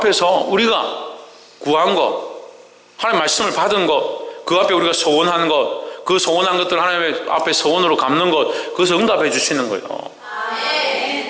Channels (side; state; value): both; identical; correlation 1.00